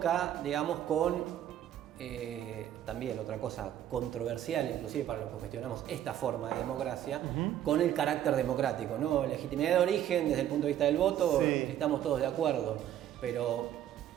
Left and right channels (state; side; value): quieter; left; 11.3 dB